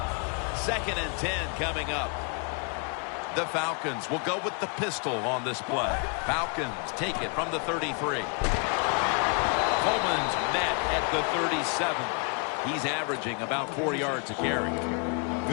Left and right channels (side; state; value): right; quieter; 36.2 dB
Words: Second and 10 coming up. The Falcons will go with the pistol on this play. Falcons take it from the 33. Coleman's met at the 37. He's averaging about 4 yards a carry.